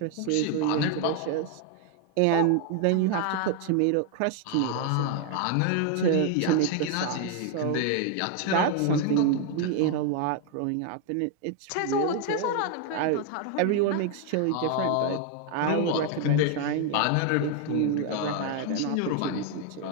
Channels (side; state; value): both; different; correlation 0.00